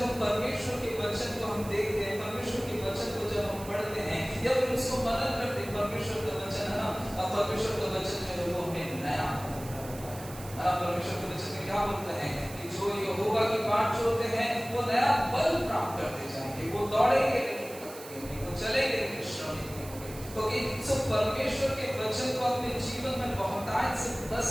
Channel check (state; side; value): noise; right; hiss, 15 dB below the sound